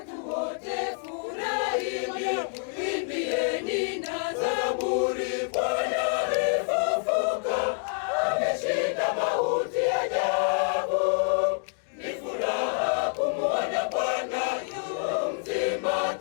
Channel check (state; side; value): silent; right; 60 dB below the other